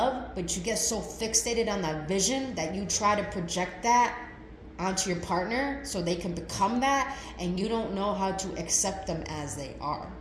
but you get so fixated on that vision that you try to project that onto your partner so they can become that, and you don't know how to accept them as they are.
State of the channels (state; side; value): identical; both; correlation 1.00